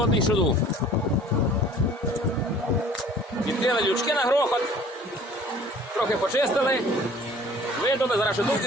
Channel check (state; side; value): normal; both; correlation 0.50